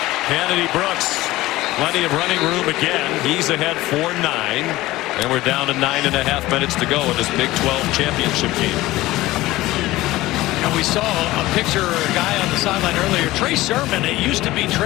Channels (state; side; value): quieter; right; 17.7 dB